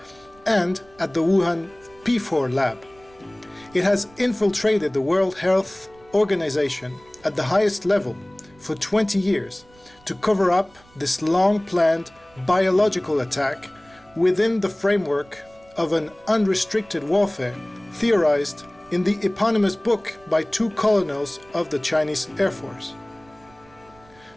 and at the Wuhan P4 lab. It has infiltrated the World Health Organization at the highest level for 20 years to cover up this long-planned biological attack within the framework of an unrestricted warfare theorized in the eponymous book by two colonels of the Chinese Air Force.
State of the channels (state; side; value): noise; right; rumble, 28 dB below the sound